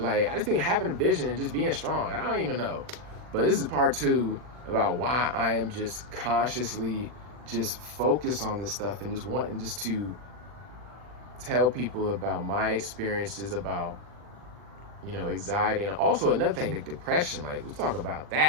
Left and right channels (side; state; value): left; late; 40 ms